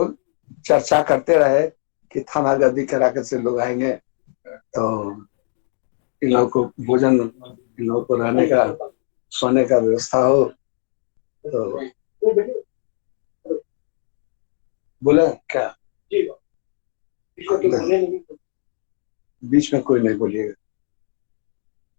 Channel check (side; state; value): right; silent; digital silence